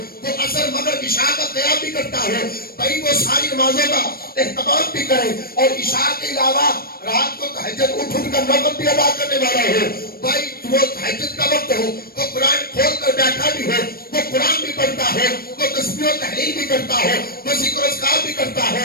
وہ عصر مغرب عشاء کا قیام بھی کرتا ہو، بھائی وہ ساری نمازوں کا اہتمام بھی کرے اور عشاء کے علاوہ رات کو تہجد اٹھ کر نفل بھی ادا کرنے والا ہو. بھائی وہ تہجد کا وقت ہو وہ قرآن کھول کر بیٹھا بھی ہو، وہ قرآن بھی پڑھتا ہو، وہ تسبیح و تحلیل بھی کرتا ہو، وہ ذکر و اذکار بھی کرتا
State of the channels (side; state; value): right; late; 0.44 ms